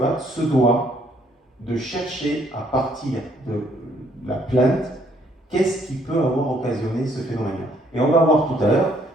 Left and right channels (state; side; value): normal; both; correlation 0.66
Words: se doit de chercher à partir de la plainte qu'est-ce qui peut avoir occasionné ce phénomène-là. Et on va voir tout à l'heure